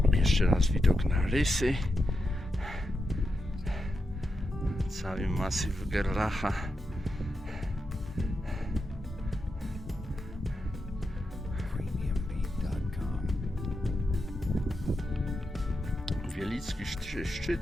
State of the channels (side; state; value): both; normal; correlation 0.87